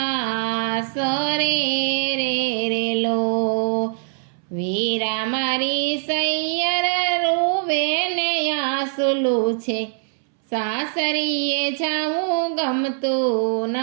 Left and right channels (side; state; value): left; silent; 64 dB below the other